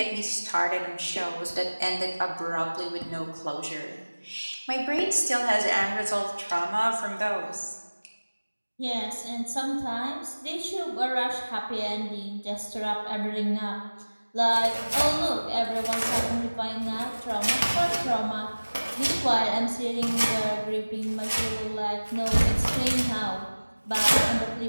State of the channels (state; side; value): inverted; both; correlation -1.00